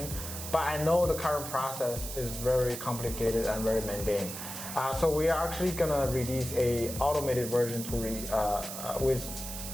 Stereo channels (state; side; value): noise; right; hiss, 8 dB below the sound